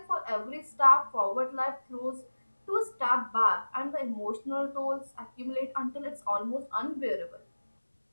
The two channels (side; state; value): both; inverted; correlation -1.00